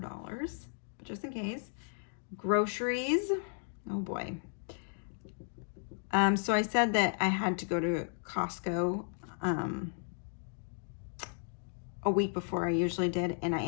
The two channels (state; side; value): silent; right; digital silence